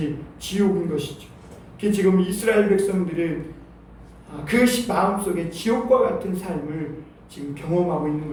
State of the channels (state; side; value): identical; both; correlation 1.00